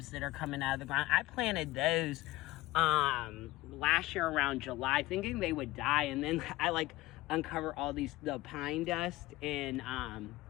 that are coming out of the ground. I planted those last year around July, thinking they would die, and then I like uncover all the pine dust and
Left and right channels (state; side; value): quieter; right; 18.5 dB